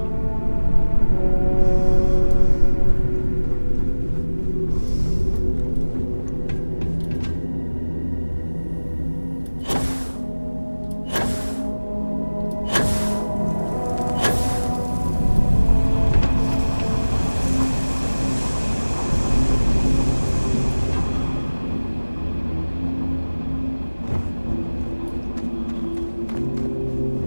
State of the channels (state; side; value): inverted; both; correlation -1.00